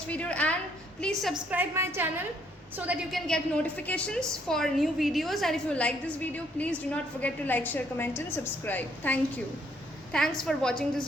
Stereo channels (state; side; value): normal; both; correlation 0.68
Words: video and please subscribe my channel so that you can get notifications for new videos. And if you like this video, please do not forget to like, share, comment and subscribe. Thank you. Thanks for watching this